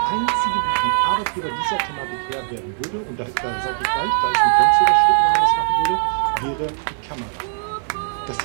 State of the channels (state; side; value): silent; left; 65 dB below the other